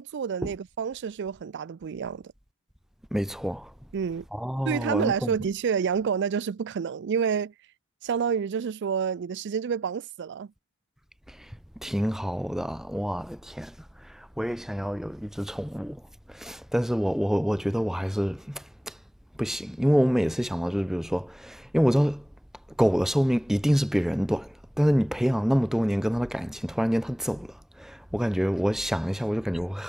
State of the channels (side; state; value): both; normal; correlation 0.74